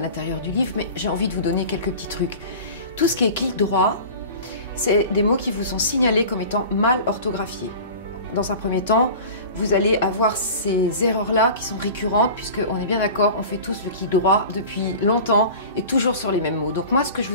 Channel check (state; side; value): inverted; both; correlation -0.37